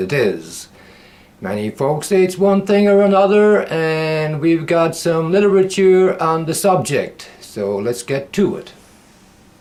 is. Many folks say it's one thing or another, and we've got some literature on the subject, so let's get to it.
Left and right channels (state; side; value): identical; both; correlation 1.00